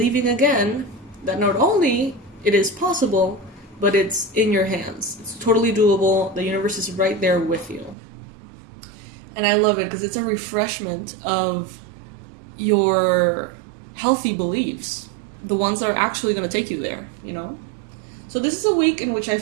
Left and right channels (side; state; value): left; drops out; at 8.0 s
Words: again that not only it is possible, but it's in your hands. It's totally doable. The universe is right there with you. And I love it because it's a refreshment of your healthy beliefs, the ones that are actually going to take you there, you know? So this is a week in which I